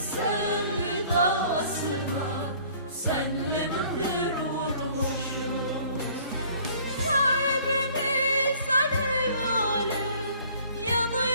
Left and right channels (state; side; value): inverted; both; correlation -0.55